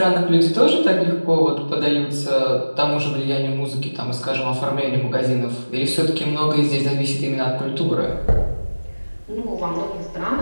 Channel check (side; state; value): both; inverted; correlation -1.00